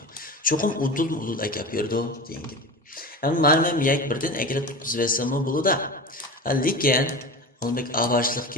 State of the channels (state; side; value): normal; both; correlation 0.29